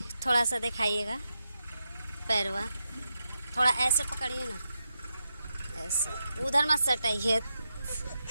सा दिखाइएगा पैरवा। थोड़ा ऐसे पकड़िए ना, ऐसे उधर मत सटाइए।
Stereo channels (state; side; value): inverted; both; correlation -0.87